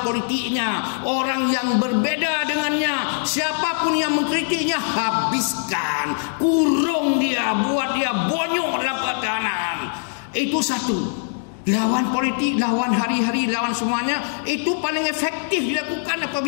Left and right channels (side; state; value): right; silent; digital silence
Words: politiknya, orang yang berbeda dengannya. Siapapun yang mengkritiknya, habiskan, kurung dia, buat dia bonyok dalam pertahanan. Itu satu. Lawan politik, lawan hari-hari, lawan semuanya, itu paling efektif dilakukan